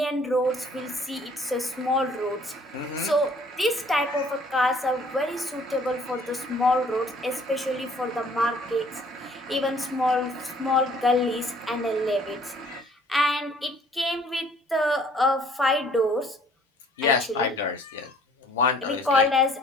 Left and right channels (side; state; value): both; normal; correlation 0.57